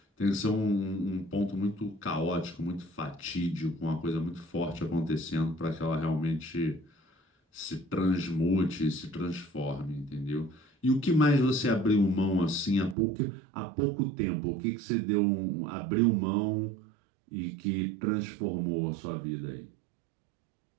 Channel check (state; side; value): drops out; left; at 13.0 s